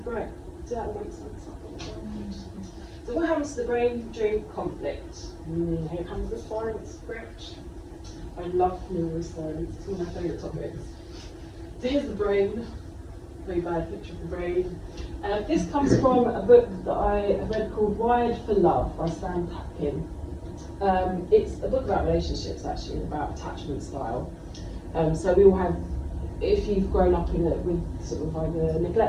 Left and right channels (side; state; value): both; identical; correlation 1.00